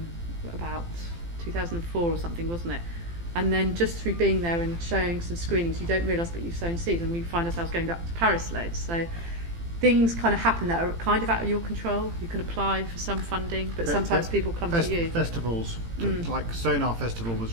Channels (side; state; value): left; late; 18 ms